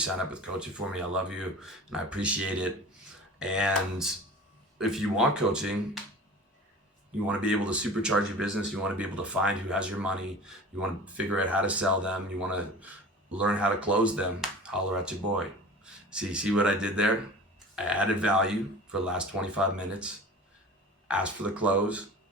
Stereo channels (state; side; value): normal; both; correlation 0.38